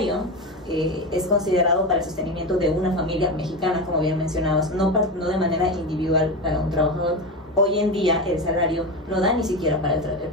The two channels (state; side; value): normal; both; correlation 0.20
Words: es considerado para el sostenimiento de una familia mexicana, como bien mencionabas, no de manera individual para un trabajador. Hoy en día el salario no da ni siquiera para el